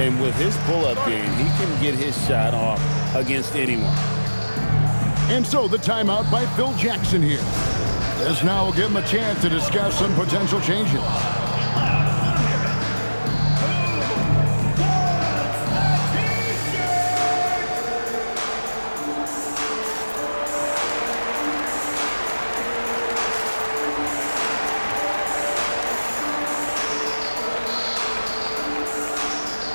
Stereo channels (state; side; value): inverted; both; correlation -1.00